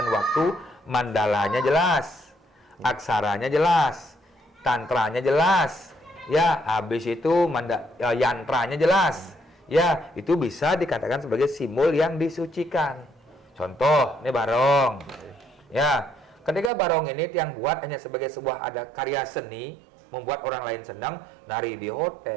waktu, mandalanya jelas, aksaranya jelas, tantranya jelas, ya habis itu yantranya jelas, ya itu bisa dikatakan sebagai simbol yang disucikan. Contoh, ini barong, ya ketika barong ini yang buat hanya sebagai sebuah ada karya seni, membuat orang lain senang, nari di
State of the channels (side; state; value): left; drops out; at 16.7 s